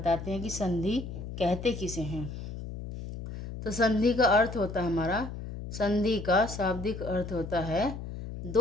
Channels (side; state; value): left; noise; hum, 8 dB below the sound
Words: हैं कि संधि कहते किसे हैं। तो संधि का अर्थ होता है हमारा, संधि का शाब्दिक अर्थ होता है